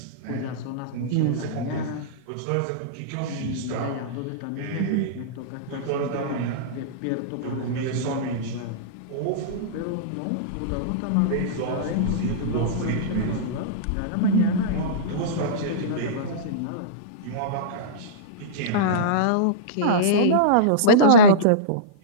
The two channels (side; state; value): both; different; correlation -0.05